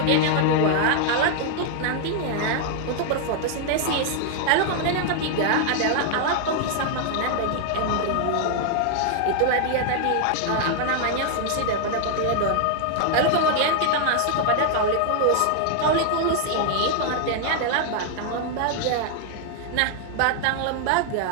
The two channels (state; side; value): different; both; correlation 0.00